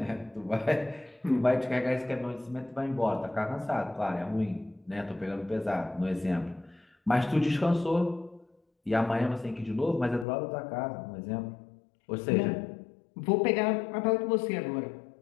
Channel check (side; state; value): right; drops out; at 10.2 s